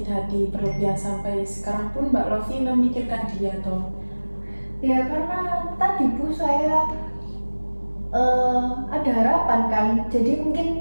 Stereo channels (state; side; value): inverted; both; correlation -1.00